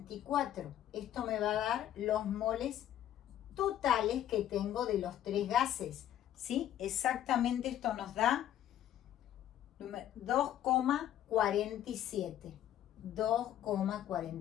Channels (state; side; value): quieter; right; 11.6 dB